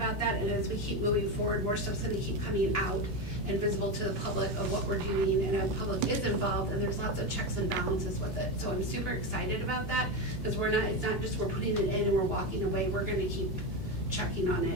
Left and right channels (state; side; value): normal; both; correlation 0.15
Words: that, and as we keep moving forward, more stuff's gonna keep coming out and visible to the public of what we're doing, and the public is involved, and there's lots of checks and balances with it. So I'm super excited about that, because it's not just we're putting it in and we're walking away, we're gonna keep checking on